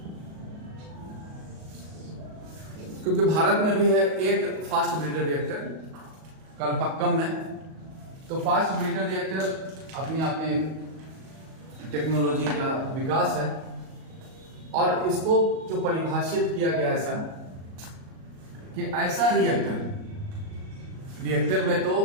क्योंकि भारत में भी है एक फास्ट ब्रीडर रिएक्टर कलपक्कम में। तो फास्ट ब्रीडर रिएक्टर अपने आप में एक टेक्नोलॉजी का विकास है, और इसको जो परिभाषित किया गया ऐसा कि ऐसा रिएक्टर में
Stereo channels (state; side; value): late; left; 38 ms